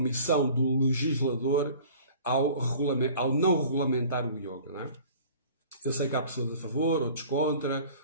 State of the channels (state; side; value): inverted; both; correlation -0.47